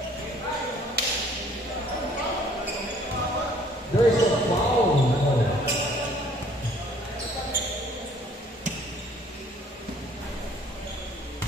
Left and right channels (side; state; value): both; normal; correlation 0.58